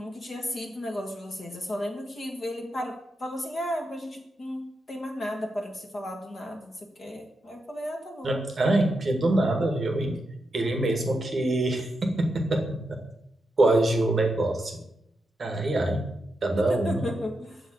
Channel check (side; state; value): both; normal; correlation 0.85